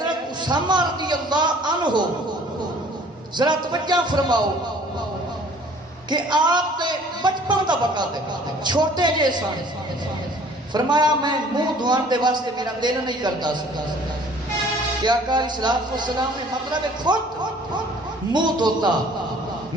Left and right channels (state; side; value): normal; both; correlation 0.53